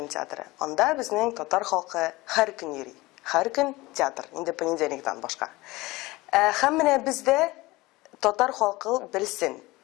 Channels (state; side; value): quieter; right; 20.8 dB